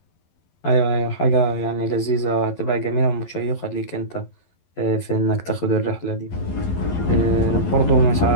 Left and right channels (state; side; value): late; right; 11 ms